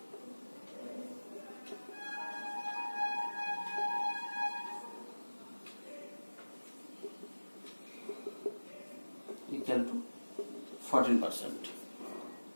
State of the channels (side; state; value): both; inverted; correlation -1.00